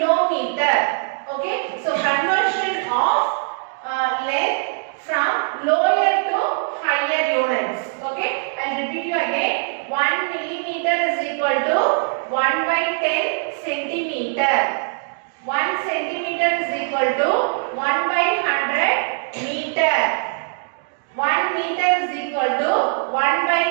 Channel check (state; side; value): silent; left; 59 dB below the other